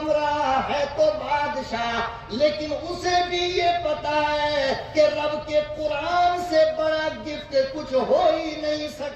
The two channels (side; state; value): both; identical; correlation 1.00